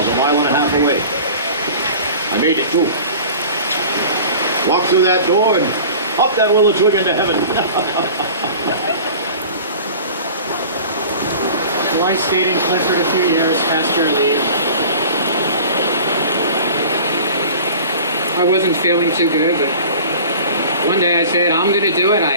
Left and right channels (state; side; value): inverted; both; correlation -0.41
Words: a mile and a half away. I made it too. Walked through that door and up that willow twig into heaven. Well, I stayed in Clifford a few years past your leave. I wasn't feeling too good, but one day I said, I'm going to do it.